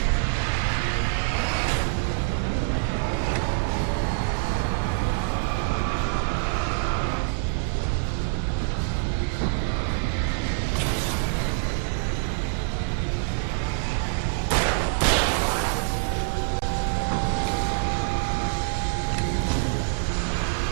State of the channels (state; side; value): silent; left; digital silence